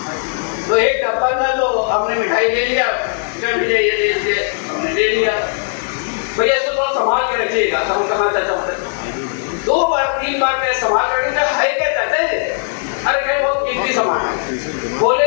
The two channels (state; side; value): silent; right; digital silence